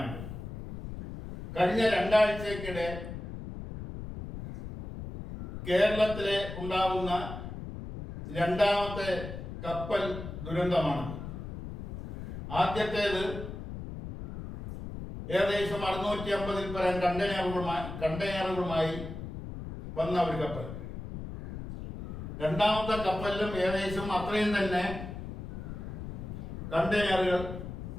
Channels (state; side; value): noise; left; rumble, 9 dB below the sound